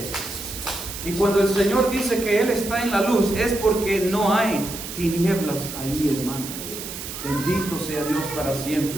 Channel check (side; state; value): right; noise; hiss, 9 dB below the sound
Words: Y cuando el Señor dice que Él está en la luz, es porque no hay tinieblas ahí, hermanos. Bendito sea Dios para